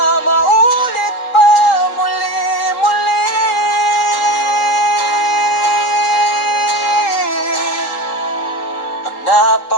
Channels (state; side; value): late; right; 3.8 ms